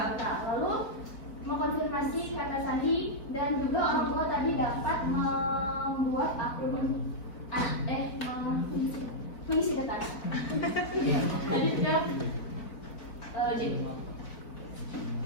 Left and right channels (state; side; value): late; right; 4.7 ms